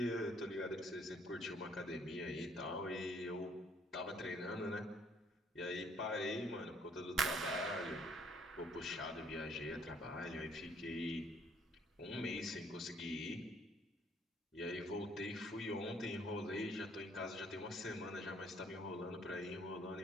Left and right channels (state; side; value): normal; both; correlation 0.63